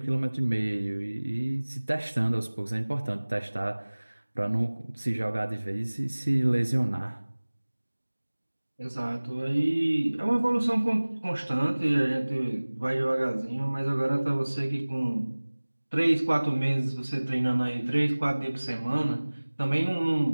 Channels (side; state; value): both; inverted; correlation -1.00